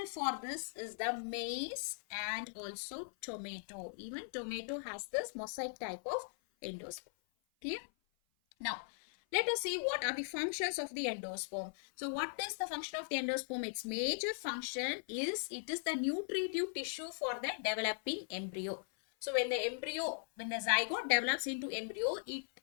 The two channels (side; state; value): right; silent; 52 dB below the other